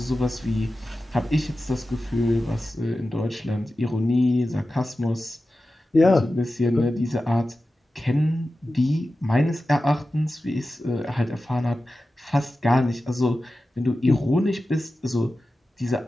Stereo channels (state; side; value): normal; both; correlation 0.94